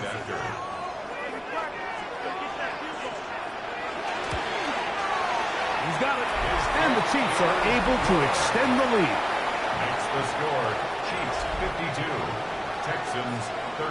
He's got it. And the Chiefs are able to extend the lead. Makes the score. Chiefs 52. Texans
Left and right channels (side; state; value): both; identical; correlation 1.00